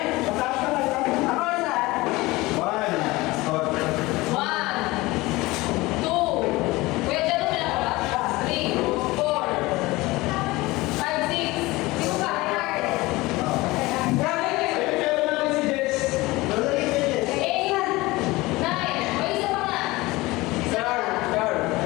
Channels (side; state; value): right; quieter; 20.8 dB